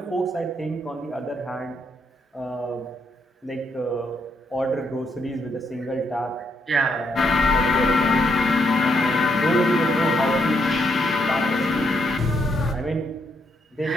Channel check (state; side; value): normal; both; correlation 0.76